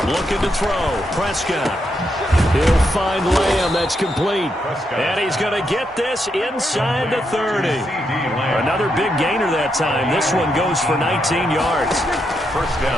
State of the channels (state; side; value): normal; both; correlation 0.81